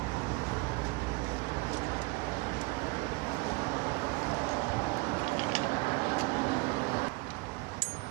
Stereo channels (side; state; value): left; quieter; 25.0 dB